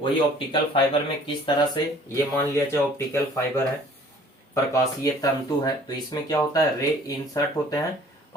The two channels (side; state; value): both; normal; correlation 0.53